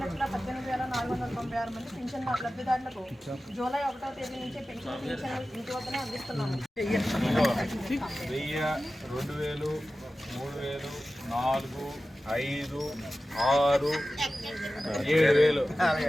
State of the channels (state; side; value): normal; both; correlation 0.95